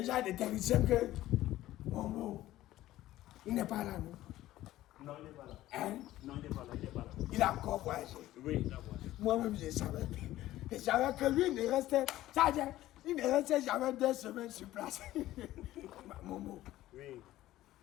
des techniciens que... Mon mot, il n'est pas là, non? Non, il n'est pas là. Hein? Non, il n'est pas là. Il a encore voyagé. Oui, il a voyagé. Moi-même, je savais. Je savais que lui, il ne restait... Sergent, il ne restait jamais 2 semaines sur place. Momo. Oui.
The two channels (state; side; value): quieter; right; 15.0 dB